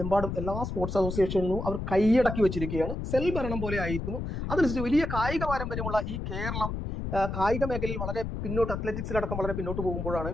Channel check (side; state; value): left; noise; rumble, 4 dB below the sound